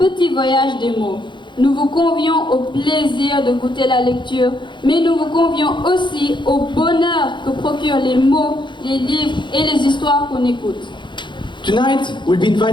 voyage des mots. Nous vous convions au plaisir de goûter la lecture, mais nous vous convions aussi au bonheur que procurent les mots, les livres et les histoires qu'on écoute. Tonight, we'll be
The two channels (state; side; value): late; right; 0.23 ms